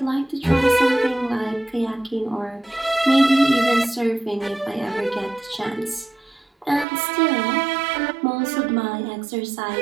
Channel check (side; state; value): left; drops out; at 6.9 s